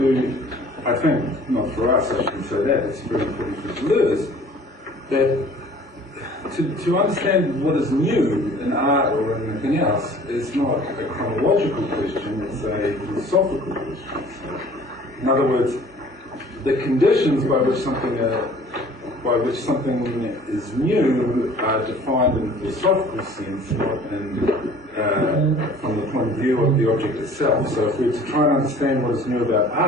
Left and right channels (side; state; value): both; normal; correlation 0.49